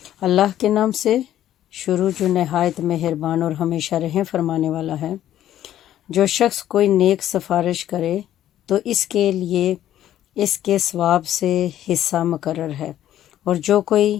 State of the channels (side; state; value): right; quieter; 12.0 dB